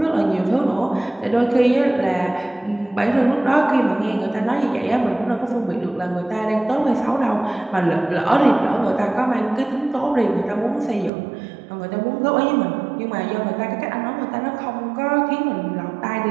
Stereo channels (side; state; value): left; drops out; at 11.1 s